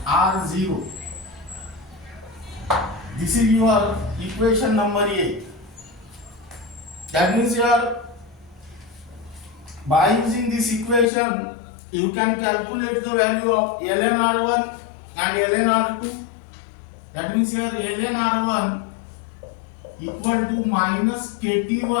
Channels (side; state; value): right; drops out; at 11.1 s